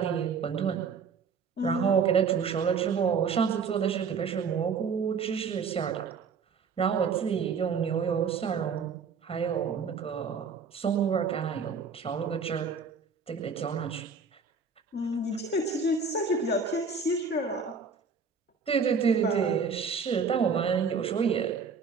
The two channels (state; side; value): quieter; left; 5.5 dB